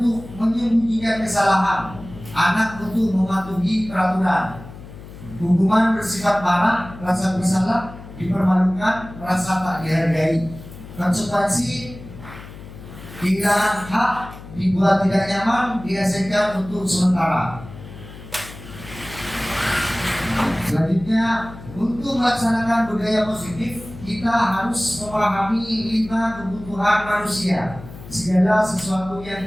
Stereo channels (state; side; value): noise; left; hum, 15 dB below the sound